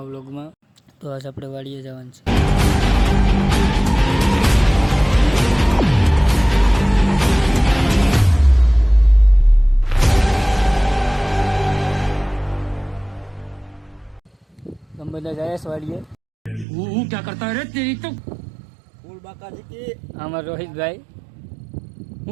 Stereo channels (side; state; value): left; drops out; at 16.7 s